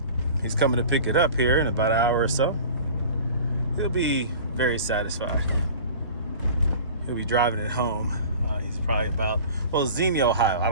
He's coming to pick it up here in about an hour or so. He'll be very satisfied. He'll be driving it home. He's probably about, well, Xenia, Ohio. I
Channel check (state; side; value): inverted; both; correlation -0.41